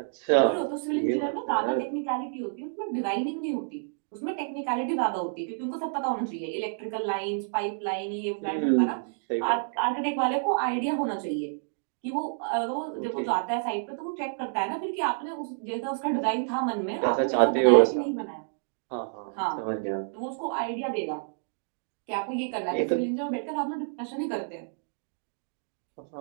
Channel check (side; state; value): left; silent; digital silence